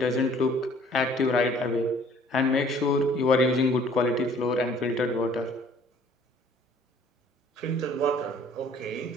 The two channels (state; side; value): normal; both; correlation 0.56